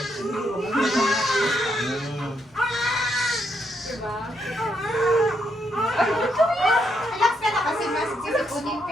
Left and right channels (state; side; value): normal; both; correlation 0.77